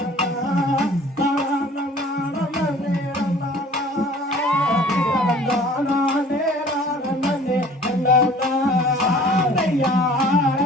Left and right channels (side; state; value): both; normal; correlation 0.50